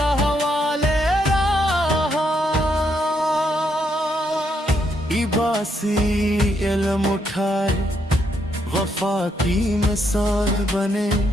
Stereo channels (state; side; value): normal; both; correlation 0.76